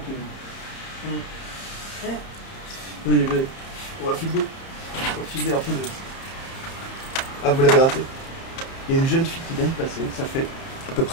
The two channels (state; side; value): late; right; 31 ms